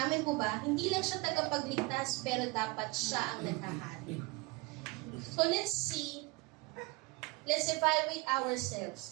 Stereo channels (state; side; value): quieter; left; 24.6 dB